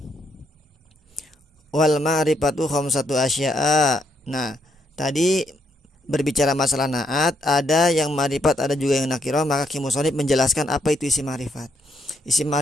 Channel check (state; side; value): normal; both; correlation 0.75